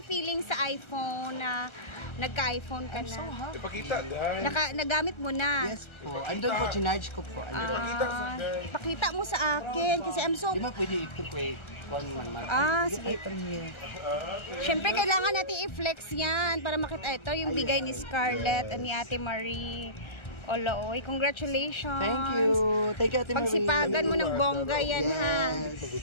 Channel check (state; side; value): late; right; 1.3 ms